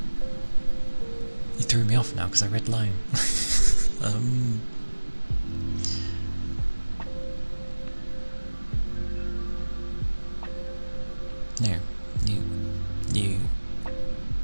You threw me off now because I read lime. No,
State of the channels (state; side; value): inverted; both; correlation -1.00